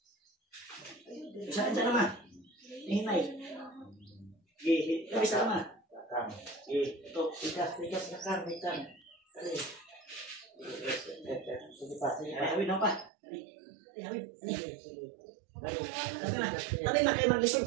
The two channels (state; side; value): drops out; left; at 13.1 s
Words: Saan siya naman? Hinay. Isa naman. Ito, tigas, nakang. Dali. Sige pa, hawid na pa. Hawid. Tabi na kayo mag-listen